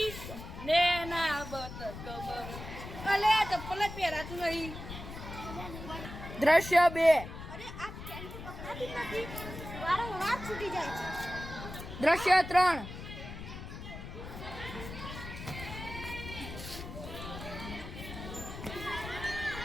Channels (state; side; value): noise; left; rumble, 10 dB below the sound